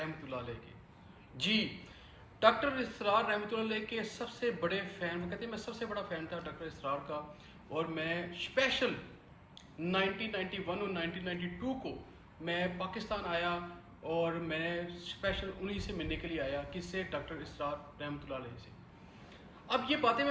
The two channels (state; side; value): identical; both; correlation 1.00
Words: अलैह के। जी, डॉक्टर इसरार रहमतुल्लाह अलैह के सबसे बड़े फ़ैन, वो कहते हैं मैं सबसे बड़ा फ़ैन था डॉक्टर इसरार का। और मैं स्पेशल 1991 और 1992 को मैं पाकिस्तान आया और मैं स्पेशल उन्हीं से मिलने के लिए आया। किससे? डॉक्टर इसरार रहमतुल्लाह अलैह से। अब ये बातें